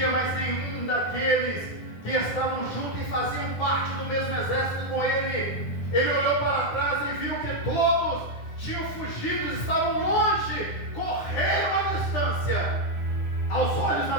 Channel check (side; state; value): right; late; 9.7 ms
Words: mais nenhum daqueles que estavam juntos e faziam parte do mesmo exército com ele, ele olhou para trás e viu que todos tinham fugido, estavam longe, correram a distância, aos olhos